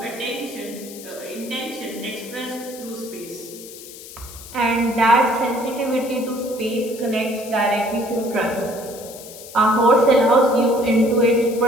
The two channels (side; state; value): left; noise; hiss, 15 dB below the sound